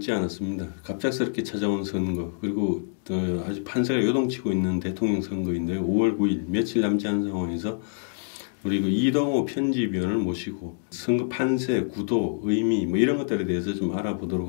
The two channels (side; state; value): right; silent; digital silence